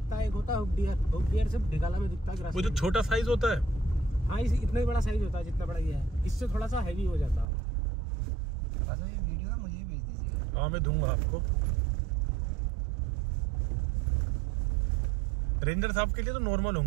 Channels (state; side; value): drops out; left; at 7.5 s